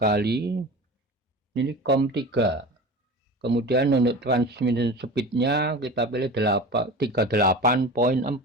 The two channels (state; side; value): normal; both; correlation 0.33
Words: ini COM 3. Kemudian untuk transmission speed-nya kita pilih 38.4,